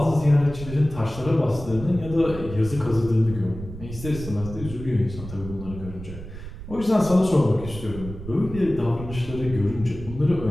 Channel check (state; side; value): noise; right; rumble, 12 dB below the sound